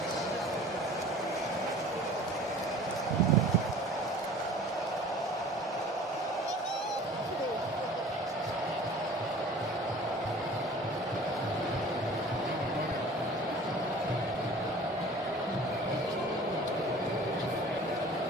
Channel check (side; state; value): both; normal; correlation 0.45